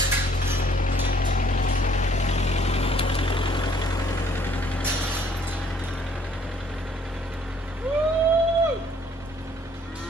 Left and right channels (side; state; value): both; normal; correlation 0.61